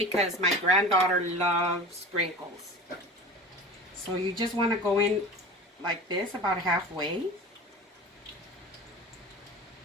my granddaughter loves sprinkles. So you just want to go in like this, about halfway.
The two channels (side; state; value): both; normal; correlation 0.35